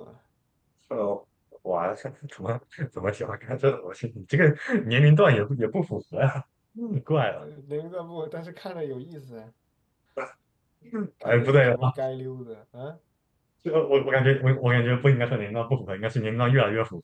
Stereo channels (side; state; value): both; identical; correlation 1.00